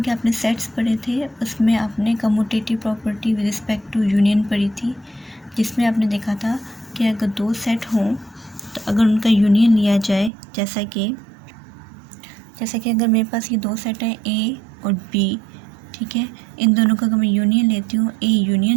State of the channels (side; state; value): left; drops out; at 10.3 s